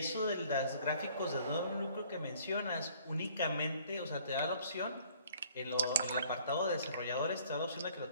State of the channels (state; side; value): inverted; both; correlation -0.57